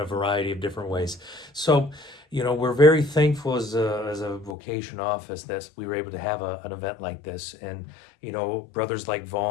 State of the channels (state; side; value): drops out; right; at 4.5 s